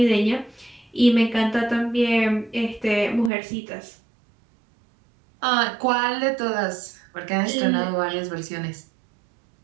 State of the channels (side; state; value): left; drops out; at 3.3 s